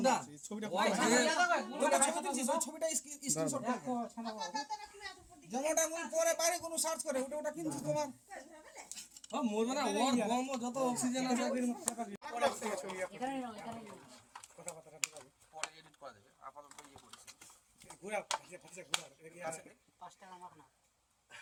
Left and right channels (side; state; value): both; identical; correlation 1.00